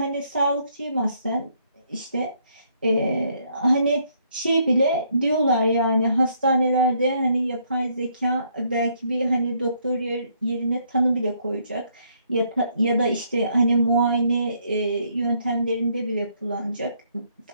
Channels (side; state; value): both; inverted; correlation -0.70